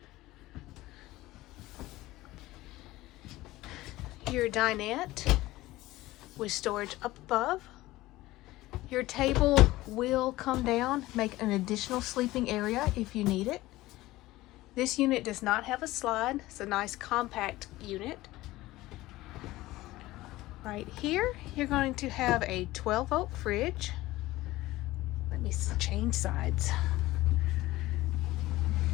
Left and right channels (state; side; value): quieter; right; 17.8 dB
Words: Your dinette with storage up above. Your table will come down, make an additional sleeping area if you need it. This unit does not have a slide. It's a nice compact unit. Right here, you're going to have a 12-volt fridge. Let me change sides.